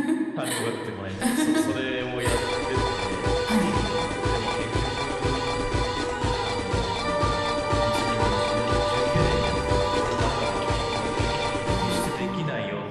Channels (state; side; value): identical; both; correlation 1.00